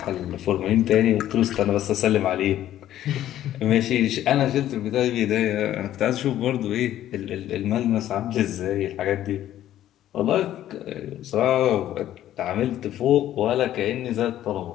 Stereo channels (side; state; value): right; quieter; 12.4 dB